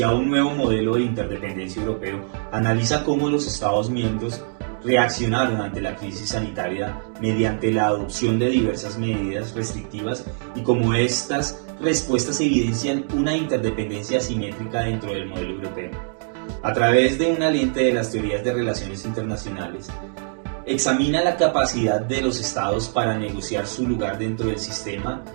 un nuevo modelo de interdependencia europeo, analiza cómo los Estados miembros reaccionaron ante la crisis sanitaria mediante la adopción de diversas medidas restrictivas y cómo estas respuestas evidencian una interdependencia asimétrica dentro del modelo europeo. A través de una lente de las teorías de relaciones internacionales, examina la capacidad de los estados para negociar su lugar dentro del sistema,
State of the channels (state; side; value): silent; left; digital silence